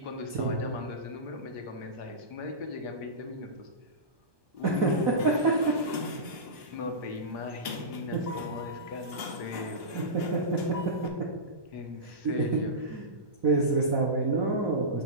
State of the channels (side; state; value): left; late; 1.2 ms